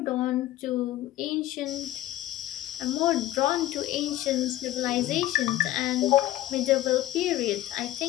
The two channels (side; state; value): right; quieter; 14.9 dB